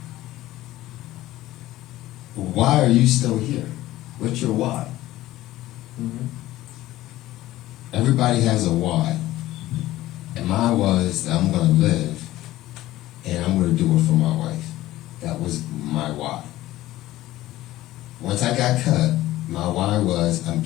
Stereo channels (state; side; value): quieter; right; 15.9 dB